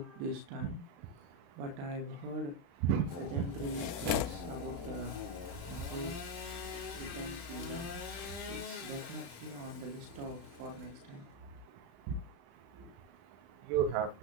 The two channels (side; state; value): left; late; 35 ms